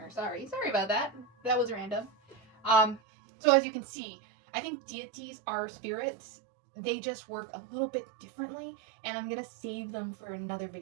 Sorry about that. That was random. So as you can see, I think deities are spirits. They just work a little bit differently, and I'm gonna save them for another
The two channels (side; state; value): left; drops out; at 3.0 s